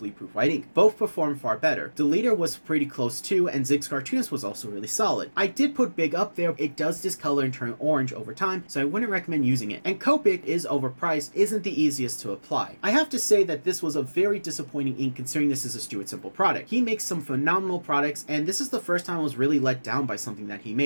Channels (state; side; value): inverted; both; correlation -1.00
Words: White Ink. Both perform far better. The leader was pretty close too, and Zig's Cartoonist was also really solid. I did put Big up there. It does discolor and turn orange over time, so I wouldn't recommend using it. And Copic is overpriced, isn't the easiest to apply. I have to say that this was a very disappointing ink considering this is a Stuart Simple product. He makes some phenomenal products, and this is the first time I was really let down by something that he